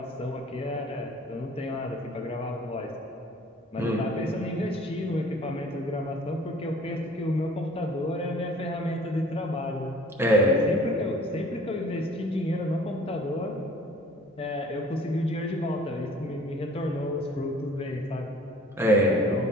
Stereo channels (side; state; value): both; normal; correlation 0.50